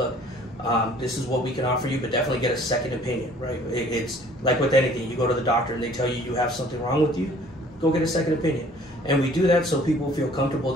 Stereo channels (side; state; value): both; normal; correlation 0.54